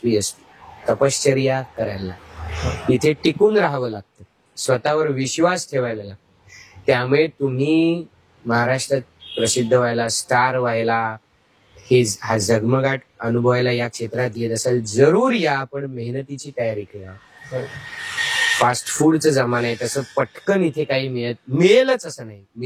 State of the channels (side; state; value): both; identical; correlation 1.00